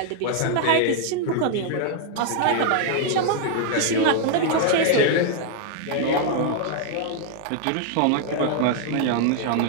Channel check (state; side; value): different; both; correlation 0.00